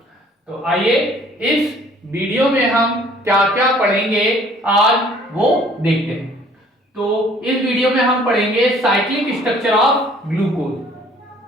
तो आइए इस वीडियो में हम क्या क्या पढ़ेंगे आज वो देखते हैं। तो इस वीडियो में हम पढ़ेंगे साइक्लिक स्ट्रक्चर ऑफ ग्लूकोज।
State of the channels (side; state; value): both; normal; correlation 0.56